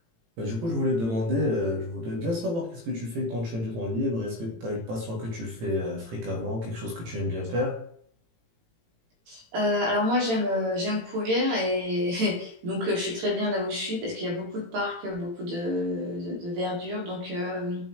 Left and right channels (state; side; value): late; left; 18 ms